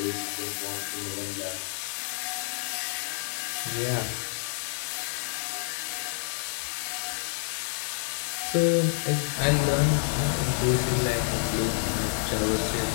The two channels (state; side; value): silent; right; digital silence